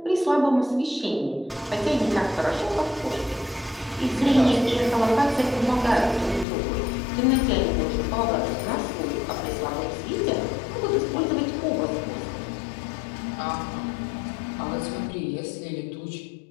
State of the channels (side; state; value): right; drops out; at 6.5 s